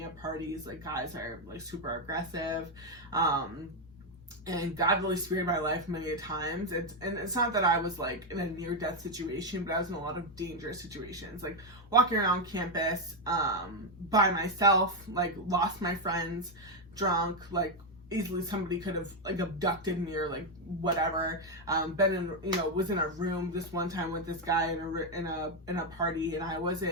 at parties. Like guys are like super aggressive, and God really spared my life many times. It's not that I was like in a near-death situation, but I was in a lot of dangerous situations, like walking around campus by myself, like lost my friends, drunk, like easily somebody could have like abducted me or like whatever. Been in, you know, was in a room this one time with this guy in a party, and I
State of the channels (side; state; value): both; normal; correlation 0.04